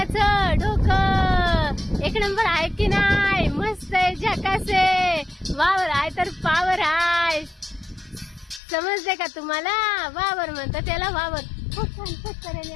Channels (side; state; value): right; drops out; at 8.6 s